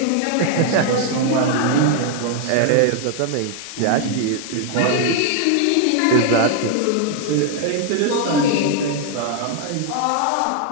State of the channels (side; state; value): both; different; correlation 0.00